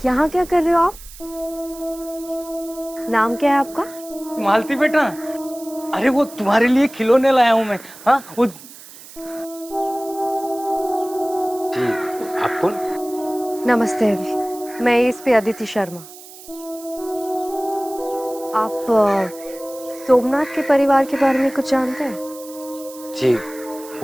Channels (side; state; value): right; noise; hiss, 18 dB below the sound